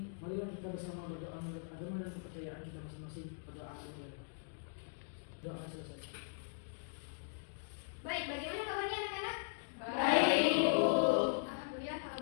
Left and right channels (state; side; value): silent; right; digital silence